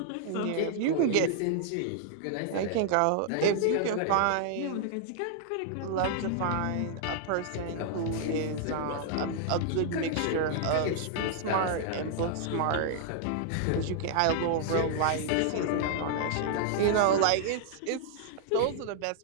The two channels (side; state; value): both; different; correlation -0.01